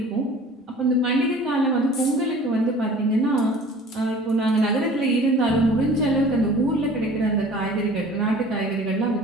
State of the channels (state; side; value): normal; both; correlation 0.46